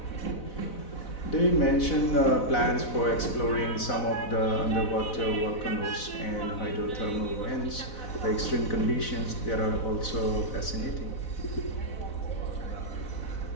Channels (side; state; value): right; late; 4.0 ms